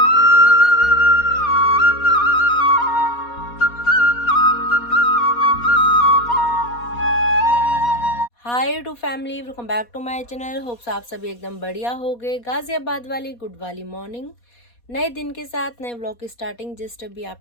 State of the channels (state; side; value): late; right; 4.2 ms